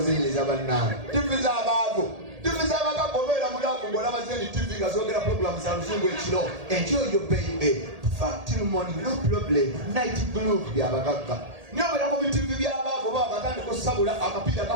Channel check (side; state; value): left; late; 1.8 ms